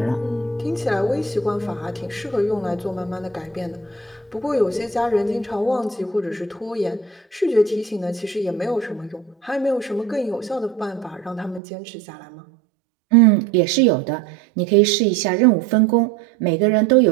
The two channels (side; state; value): left; drops out; at 11.6 s